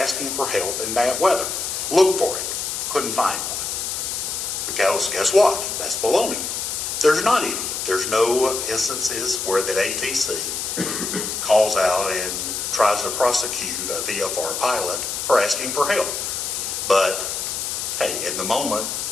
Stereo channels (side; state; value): left; noise; hiss, 3 dB below the sound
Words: for help in bad weather? Look for it. Couldn't find one. Because guess what? That's baloney. There's not any. There's no instances where that ATC calls out and tries to prosecute a VFR pilot for asking for help. But, hey, in the moment,